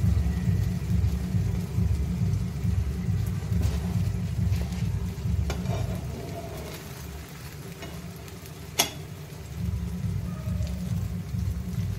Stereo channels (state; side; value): identical; both; correlation 1.00